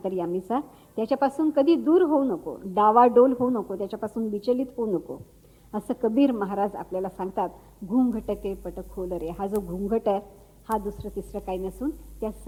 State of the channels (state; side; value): identical; both; correlation 1.00